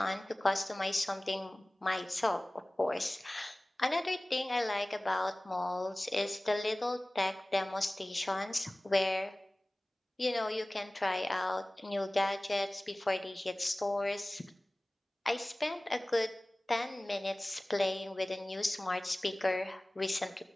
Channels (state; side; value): normal; both; correlation 0.98